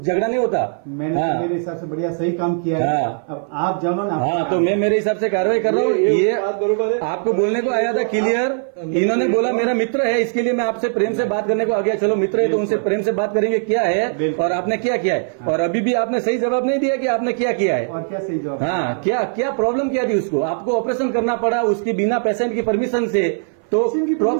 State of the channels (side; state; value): left; silent; 59 dB below the other